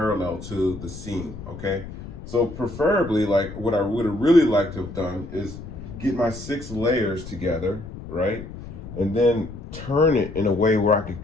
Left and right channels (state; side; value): noise; left; rumble, 12 dB below the sound